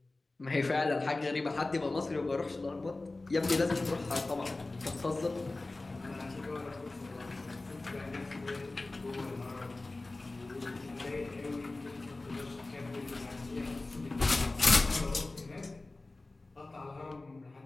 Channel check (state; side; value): quieter; right; 3.1 dB